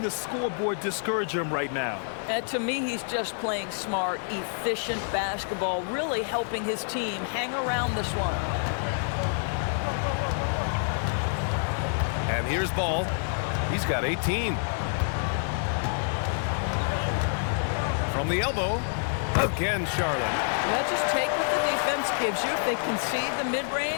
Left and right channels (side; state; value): right; silent; digital silence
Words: the scoreboard discourage him right now. And to me, he's just playing smart, efficient basketball, really helping his team hang around this one. And here's Ball. He's got 18. From the elbow, again Charlotte. Well, just take what the defense gives you. If they concede the